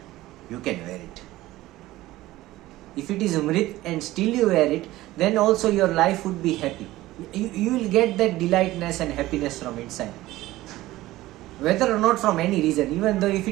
you can wear it. If it is Mrit and still you wear it, then also your life would be happy. You will get that delightness and happiness from inside. Whether or not from any reason, even though if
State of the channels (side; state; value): left; quieter; 16.9 dB